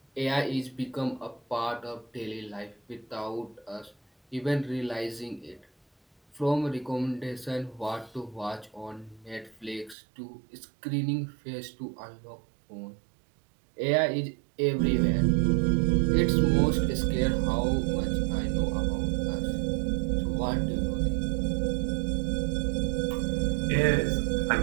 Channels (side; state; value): left; drops out; at 10.0 s